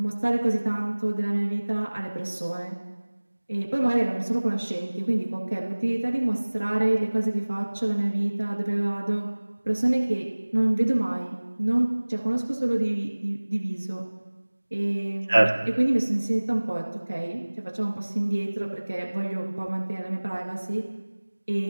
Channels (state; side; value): inverted; both; correlation -1.00